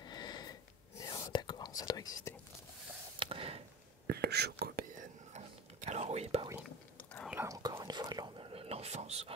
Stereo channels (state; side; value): normal; both; correlation 0.32